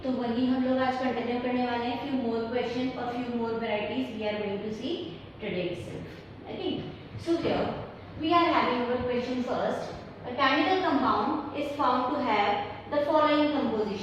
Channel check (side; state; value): both; identical; correlation 1.00